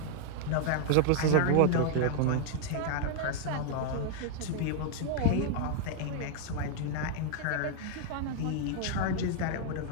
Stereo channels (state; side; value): different; both; correlation 0.00